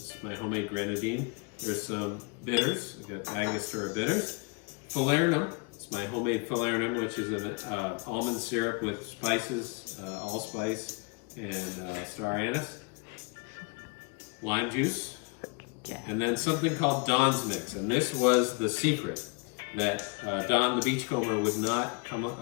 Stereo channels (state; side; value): quieter; right; 33.1 dB